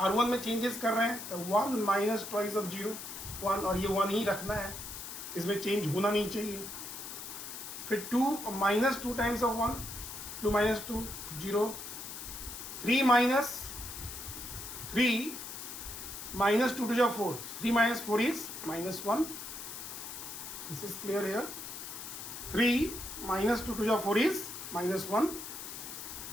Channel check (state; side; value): noise; left; hiss, 9 dB below the sound